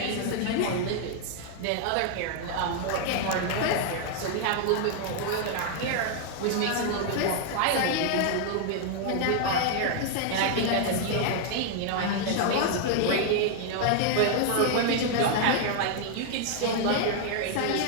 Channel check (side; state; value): both; different; correlation 0.00